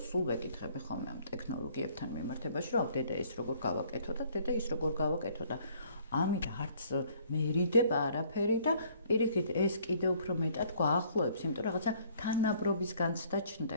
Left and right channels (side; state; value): both; inverted; correlation -0.60